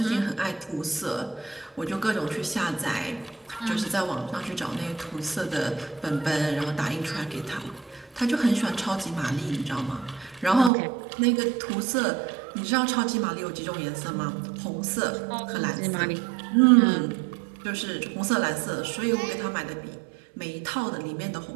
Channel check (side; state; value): left; drops out; at 10.7 s